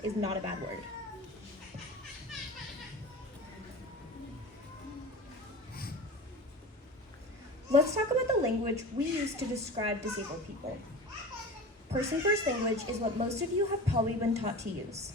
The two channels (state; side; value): normal; both; correlation 0.33